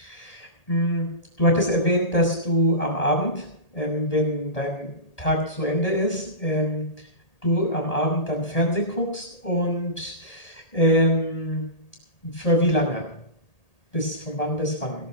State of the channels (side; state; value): right; late; 1.7 ms